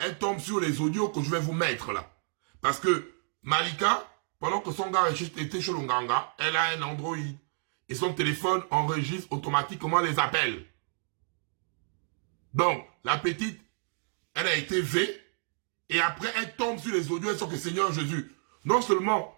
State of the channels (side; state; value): left; silent; 58 dB below the other